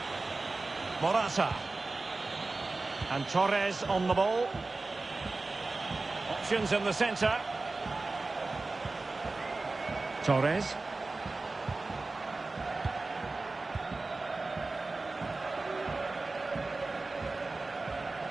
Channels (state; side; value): quieter; left; 3.4 dB